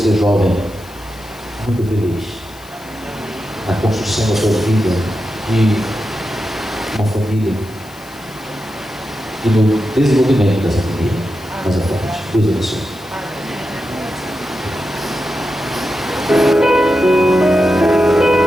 jovem, muito feliz na construção da sua vida, de uma família e no desenvolvimento dessa família mais à frente. Deus abençoe.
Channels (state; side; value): noise; left; hiss, 23 dB below the sound